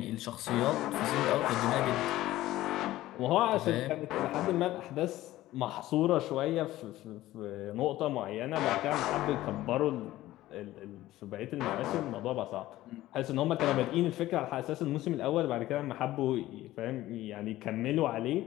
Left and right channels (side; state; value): right; quieter; 15.7 dB